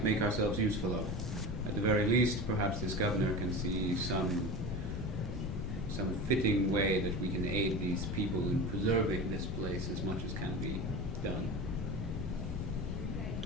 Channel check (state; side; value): noise; left; rumble, 5 dB below the sound